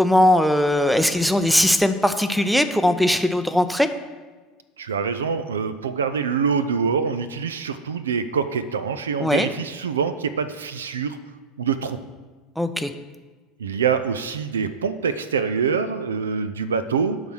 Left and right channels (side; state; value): both; normal; correlation 0.38